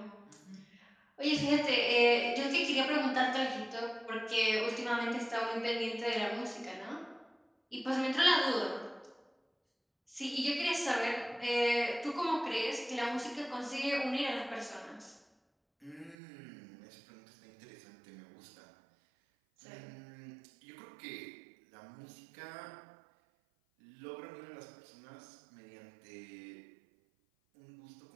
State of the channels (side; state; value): left; drops out; at 16.2 s